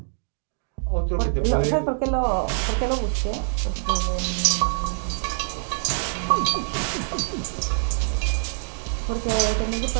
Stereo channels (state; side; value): silent; left; digital silence